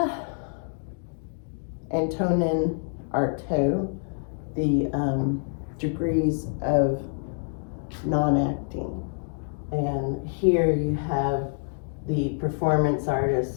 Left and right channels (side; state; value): right; silent; digital silence